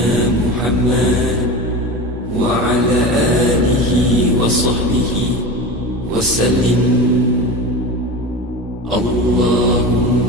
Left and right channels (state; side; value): normal; both; correlation 0.28